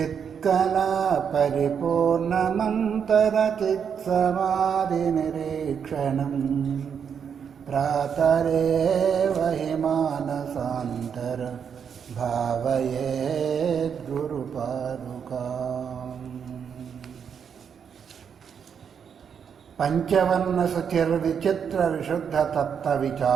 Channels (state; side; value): quieter; left; 7.3 dB